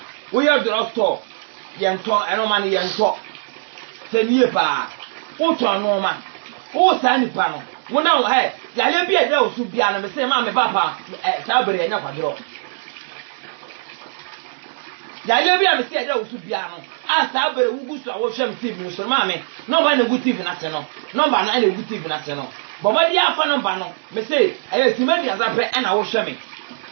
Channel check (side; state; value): left; silent; digital silence